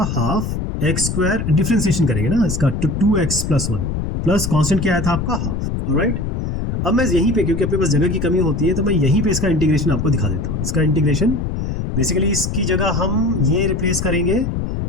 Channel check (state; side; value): noise; left; rumble, 3 dB below the sound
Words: हाफ एक्स स्क्वायर, डिफरेंशिएशन करेंगे ना इसका, तो 2x प्लस 1 प्लस कांस्टेंट क्या आया था आपका हाफ। ऑलराइट, अब मैं यहीं पे, क्योंकि अपने पास जगह की कमी होती है, तो मैं यहीं पे इसका इंटीग्रेशन आपको दिखा देता हूँ। इसका इंटीग्रेशन बेसिकली इसकी जगह हम ये रिप्लेस करेंगे,